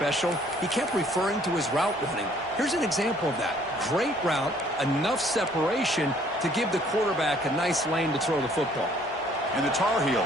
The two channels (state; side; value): normal; both; correlation 0.60